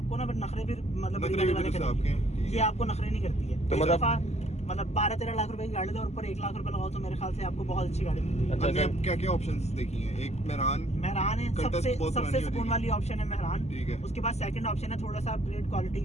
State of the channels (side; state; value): right; late; 0.32 ms